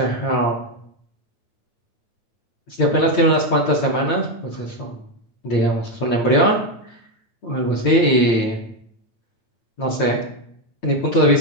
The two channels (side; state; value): right; late; 8.9 ms